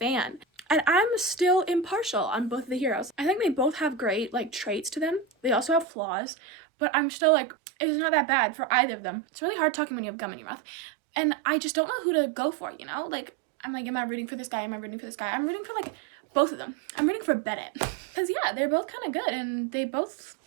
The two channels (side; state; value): left; drops out; at 5.9 s